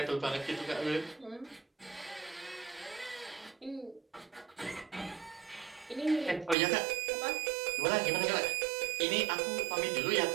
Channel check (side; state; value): left; drops out; at 6.6 s